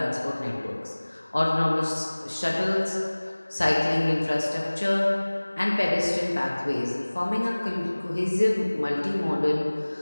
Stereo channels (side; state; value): both; inverted; correlation -1.00